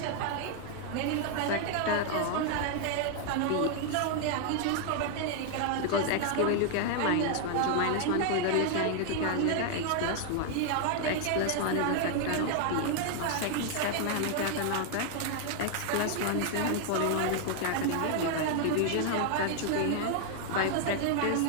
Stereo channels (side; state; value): both; different; correlation 0.00